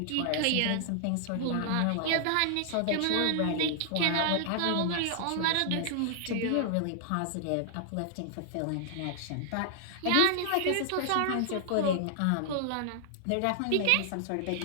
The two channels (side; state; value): both; different; correlation 0.00